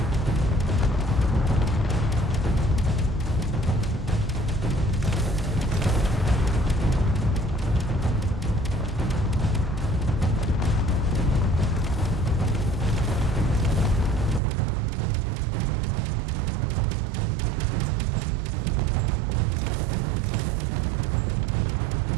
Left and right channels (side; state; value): left; drops out; at 14.4 s